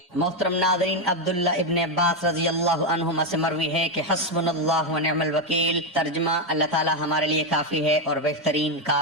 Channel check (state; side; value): normal; both; correlation 0.06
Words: محترم ناظرین، عبداللہ ابن عباس رضی اللہ عنہما سے مروی ہے کہ حسبنا اللہ ونعم الوکیل، ترجمہ اللہ تعالی ہمارے لیے کافی ہے اور بہترین